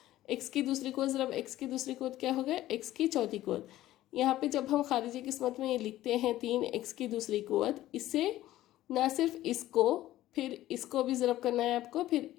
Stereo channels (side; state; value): right; quieter; 14.8 dB